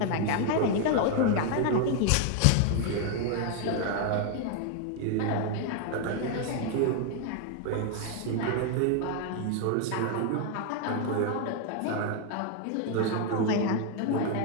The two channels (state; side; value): different; both; correlation 0.00